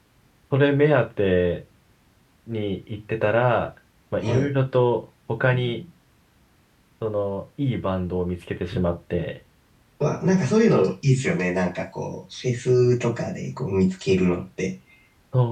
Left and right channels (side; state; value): both; identical; correlation 1.00